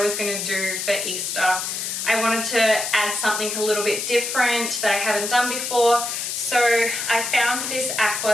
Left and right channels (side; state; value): left; noise; hiss, 3 dB below the sound